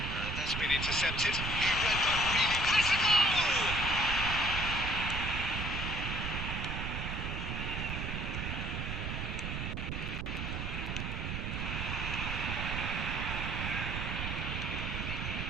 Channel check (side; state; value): right; noise; rumble, 3 dB below the sound